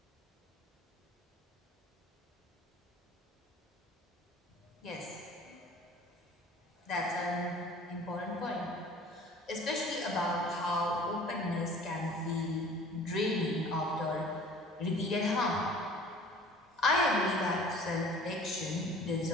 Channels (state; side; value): normal; both; correlation 0.48